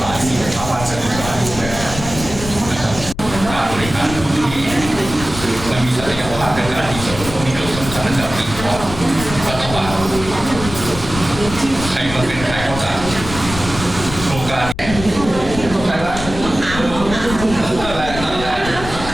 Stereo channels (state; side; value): noise; left; rumble, 9 dB below the sound